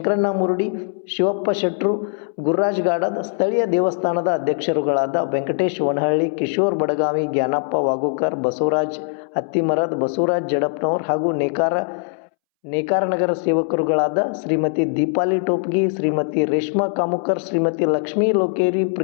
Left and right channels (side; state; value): right; silent; 65 dB below the other